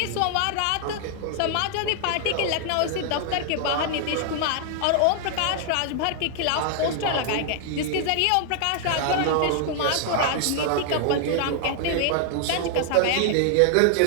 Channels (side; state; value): both; different; correlation 0.00